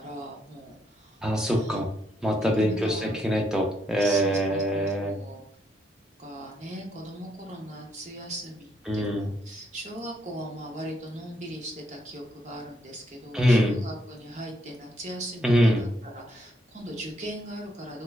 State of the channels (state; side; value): normal; both; correlation 0.74